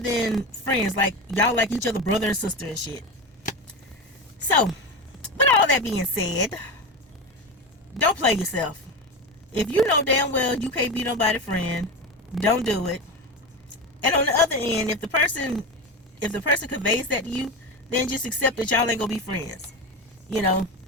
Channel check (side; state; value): both; normal; correlation 0.21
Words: friends. Like, y'all like each other brother and sister and shit. So, with all that being said, don't play yourself. If you know damn well you can't be nobody's friend, don't do it. And on the other end, if the person conveys that to you, then just accept that y'all ain't gonna be friends. You know,